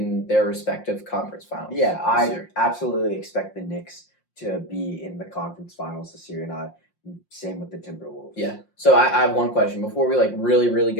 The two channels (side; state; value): right; late; 5.7 ms